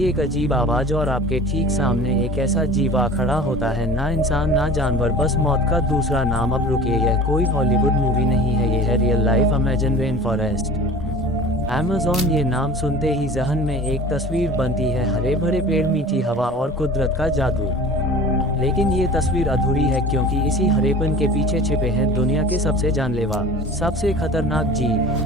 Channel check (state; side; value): normal; both; correlation 0.41